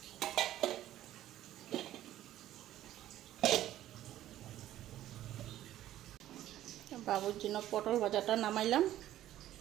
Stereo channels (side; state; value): left; quieter; 13.2 dB